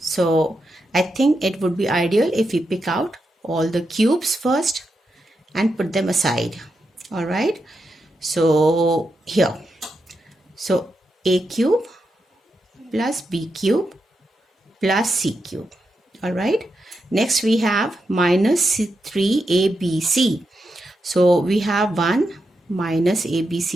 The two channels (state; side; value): normal; both; correlation 0.86